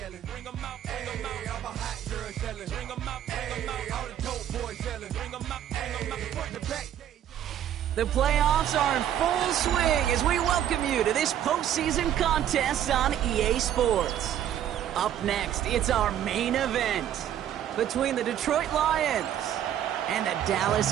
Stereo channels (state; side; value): quieter; left; 10.7 dB